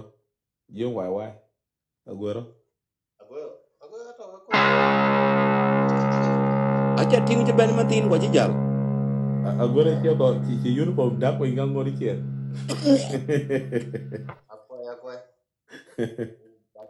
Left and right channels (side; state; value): both; identical; correlation 1.00